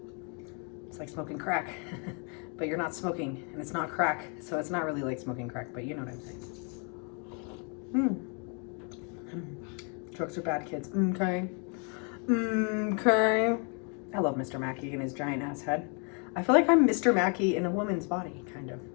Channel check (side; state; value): right; quieter; 37.7 dB